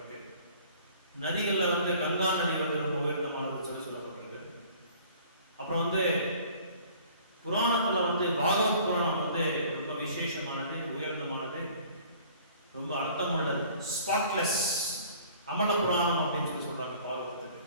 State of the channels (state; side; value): inverted; both; correlation -0.52